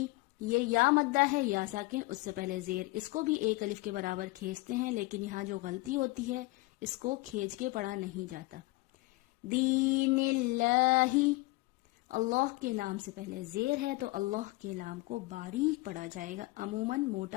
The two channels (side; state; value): right; quieter; 21.7 dB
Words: یہ یا مدہ ہے یا ساکن، اس سے پہلے زیر، اس کو بھی ایک الف کے برابر کھینچتے ہیں لیکن یہاں جو غلطی ہوتی ہے اس کو کھینچ کے پڑھا نہیں جاتا۔ دین اللہ، اللہ کے لام سے پہلے زیر ہے تو اللہ کے لام کو باریک پڑھا جائے گا، عموماً